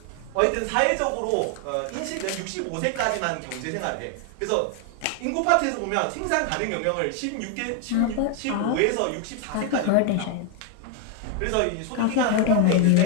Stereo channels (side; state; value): both; different; correlation 0.00